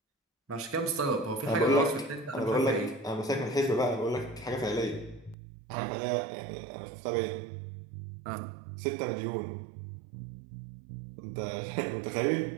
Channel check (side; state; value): left; drops out; at 5.4 s